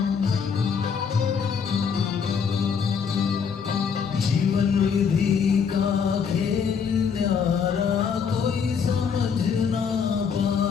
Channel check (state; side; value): quieter; right; 6.5 dB